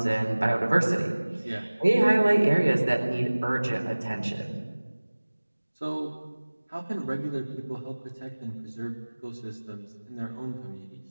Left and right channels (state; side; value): inverted; both; correlation -1.00